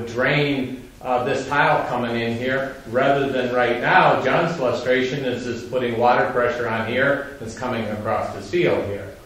drain this tile coming in here, rather than right now, John's frustration is just putting water pressure on here that's coming across this field here.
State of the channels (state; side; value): identical; both; correlation 1.00